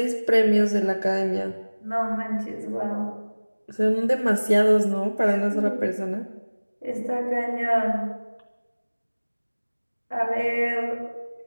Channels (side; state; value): both; inverted; correlation -1.00